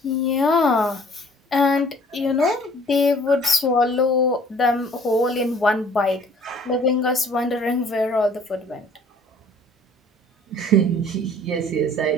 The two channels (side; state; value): both; normal; correlation 0.54